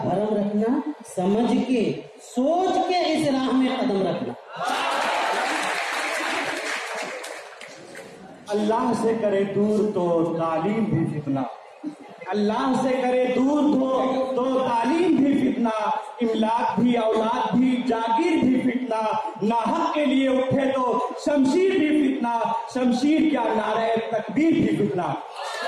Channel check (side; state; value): both; identical; correlation 1.00